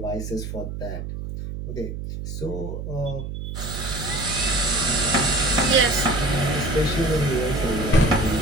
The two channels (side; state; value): right; noise; hum, 7 dB below the sound